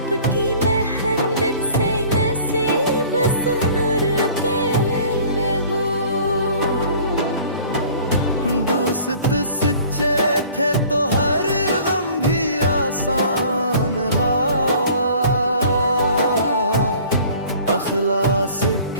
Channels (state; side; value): inverted; both; correlation -0.49